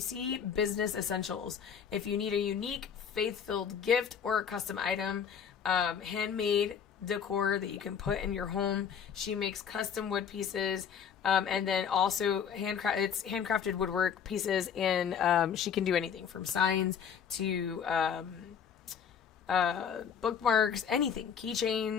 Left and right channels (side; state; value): right; quieter; 7.6 dB